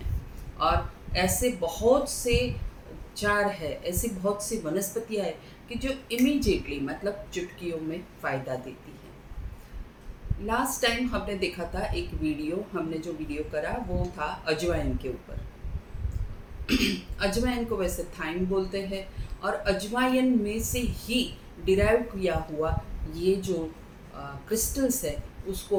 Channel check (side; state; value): both; identical; correlation 1.00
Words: और ऐसे बहुत से उपचार है, ऐसी बहुत सी वनस्पतियाँ हैं कि जो इमीडिएटली मतलब चुटकियों में फ़ायदा देती है। लास्ट टाइम हमने देखा था एक वीडियो, हमने जो वीडियो करा वो था अजवाइन के ऊपर। अजवाइन को वैसे थाइम बोलते हैं और अजवाइन में से ही डिराइव किया हुआ ये जो क्रिस्टल्स है उसको